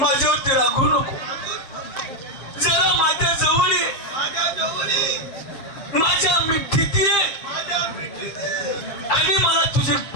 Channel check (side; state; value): right; late; 7.5 ms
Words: रागू नको जरा माझ्या जवळ ये माझ्या मिठीत ये आणि मला तुझी